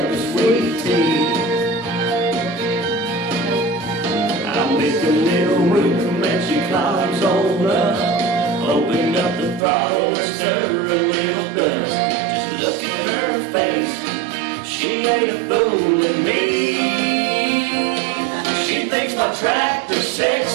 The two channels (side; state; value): left; drops out; at 9.6 s